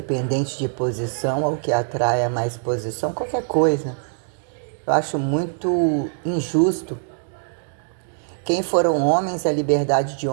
de posição ou que atrai a mais posição, qualquer coisa. Eu acho muito injusto. Quem foram homens, a liberdade de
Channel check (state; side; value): silent; left; digital silence